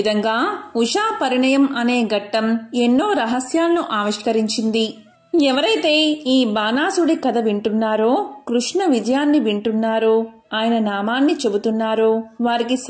ఉషా పరిణయం అనే ఘట్టం ఎన్నో రహస్యాలను ఆవిష్కరించింది. ఎవరైతే ఈ బాణాసుడి కథ వింటున్నారో, కృష్ణ విజయాన్ని వింటున్నారో, ఆయన నామాన్ని చెబుతున్నారో వారికి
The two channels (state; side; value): identical; both; correlation 1.00